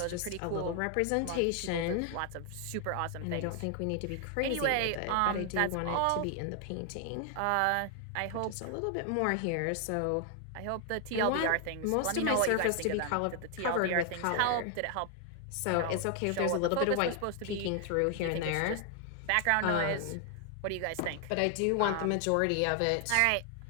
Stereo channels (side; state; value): both; different; correlation 0.00